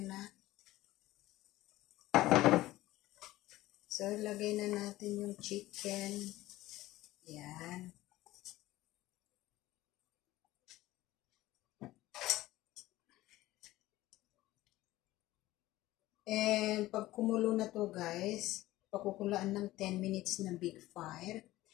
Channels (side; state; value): right; quieter; 16.7 dB